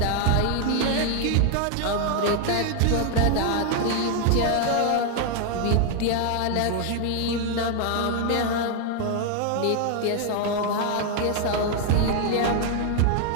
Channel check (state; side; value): different; both; correlation 0.01